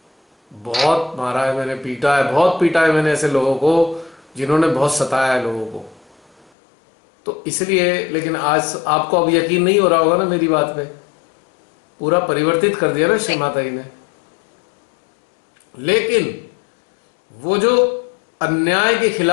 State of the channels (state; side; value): drops out; right; at 6.5 s